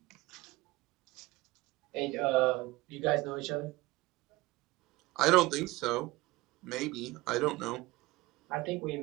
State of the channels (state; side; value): quieter; left; 20.4 dB